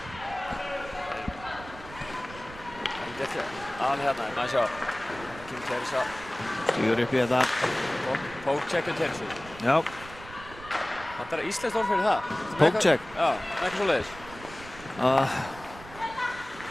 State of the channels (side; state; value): right; noise; rumble, 17 dB below the sound